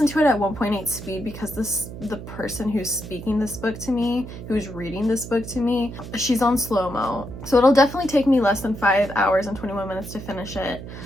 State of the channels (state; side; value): noise; right; hum, 11 dB below the sound